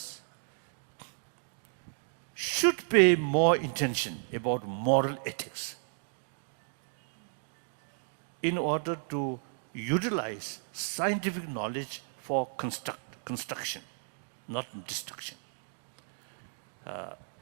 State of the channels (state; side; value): silent; left; digital silence